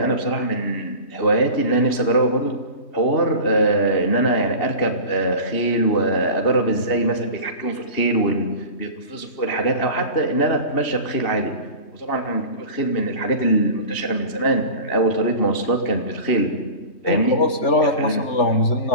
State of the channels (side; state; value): right; late; 3.2 ms